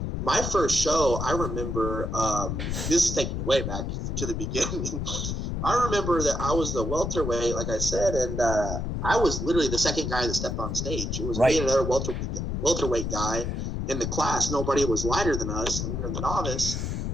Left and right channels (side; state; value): left; noise; rumble, 2 dB below the sound